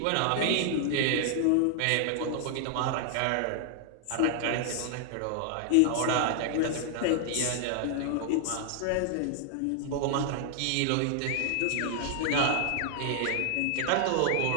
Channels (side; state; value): both; different; correlation 0.00